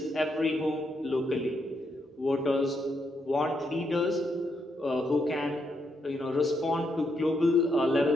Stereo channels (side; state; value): both; normal; correlation 0.79